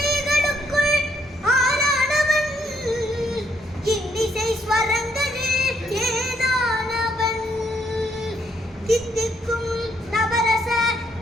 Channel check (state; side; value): normal; both; correlation 0.72